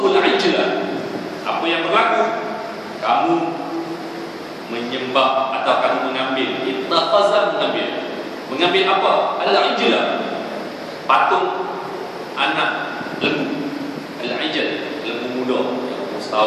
ijla, apa yang berlaku? Kamu menyembah atau kamu mengambil, ittakhaza, mengambil apa? Al-ijla, patung anak lembu. Al-ijl, lembu muda yang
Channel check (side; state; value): both; identical; correlation 1.00